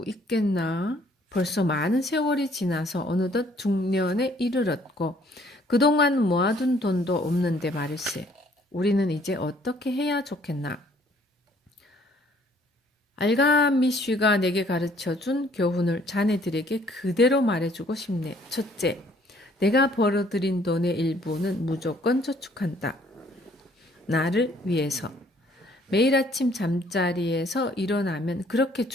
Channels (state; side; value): normal; both; correlation 0.61